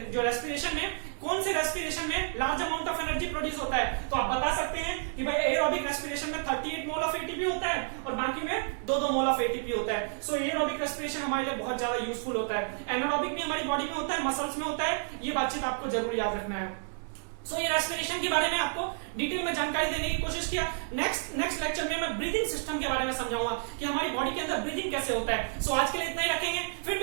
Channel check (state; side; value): silent; left; digital silence